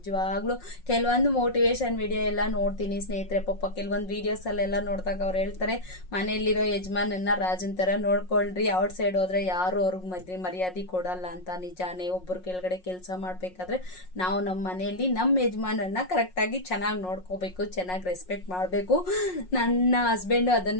ಕೆಲವೊಂದು ಮೋಟಿವೇಶನ್ ವಿಡಿಯೋ ಎಲ್ಲ ನೋಡ್ತೀನಿ ಸ್ನೇಹಿತರೆ. ಪಾಪ ಕೆಲವೊಂದು ವೀಡಿಯೋಸಲ್ಲೆಲ್ಲ ನೋಡಿದಾಗ ಅವ್ರು ಹೇಳ್ತಾರೆ, ಮನೆಯಲ್ಲಿರೋ ಯಜಮಾನನ್ನ ರಾಜನ್ ಥರ ನೋಡ್ಕೊಳ್ರಿ, ಔಟ್ಸೈಡ್ ಹೋದ್ರೆ ಯಾರು ಅವ್ರಿಗೆ ಮರ್ಯಾದೆ ಕೊಡಲ್ಲ ಅಂತ. ನಿಜಾನೇ, ಒಬ್ಬರು ಕೆಳಗಡೆ ಕೆಲಸ ಮಾಡ್ತಾರೆ, ಮಾಡಬೇಕಾದ್ರೆ ನಾವು ನಮ್ಮ ಮನೆಯಲ್ಲಿ ನಮ್ಮ ಯಜಮಾನನ್ನ ಕರೆಕ್ಟಾಗಿ ಚೆನ್ನಾಗಿ ನೋಡ್ಕೋಬೇಕು, ಚೆನ್ನಾಗಿ ರೆಸ್ಪೆಕ್ಟ್ ಮಾಡಬೇಕು. ನನ್ನ ಹಸ್ಬೆಂಡು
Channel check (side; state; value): right; late; 5.5 ms